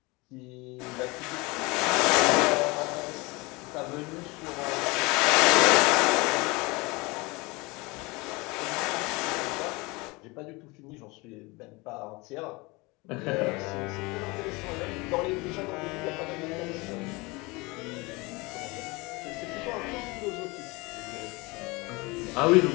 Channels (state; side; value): quieter; right; 25.0 dB